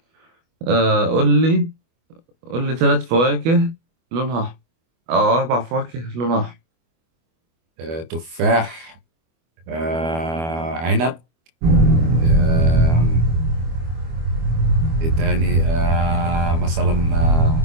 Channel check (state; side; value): late; left; 25 ms